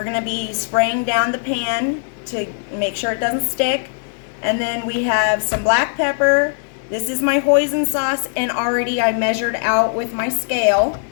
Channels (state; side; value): silent; right; digital silence